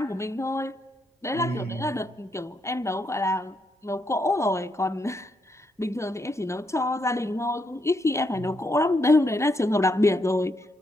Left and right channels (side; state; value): both; normal; correlation 0.78